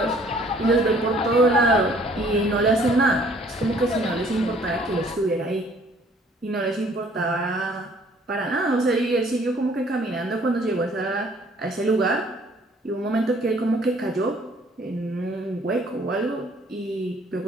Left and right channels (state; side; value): normal; both; correlation 0.59